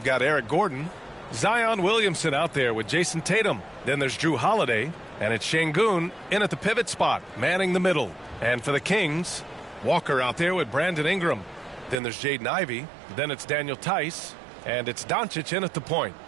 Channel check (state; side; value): drops out; left; at 12.0 s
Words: got Eric Gordon, Zion Williamson out there with Jason Tatum. Then there's Drew Holiday, and it's Şengün in at the pivot spot, manning the middle. And for the Kings, Walker out there with Brandon Ingram. Then there's Jaden Ivey. Then it's Daniel Tice. And it's Doncic in at the point.